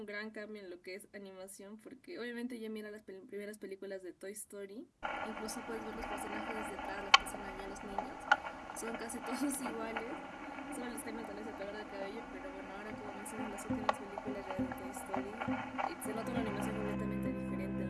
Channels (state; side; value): identical; both; correlation 1.00